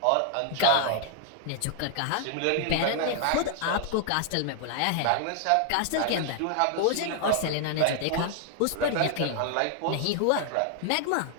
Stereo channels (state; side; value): different; both; correlation 0.00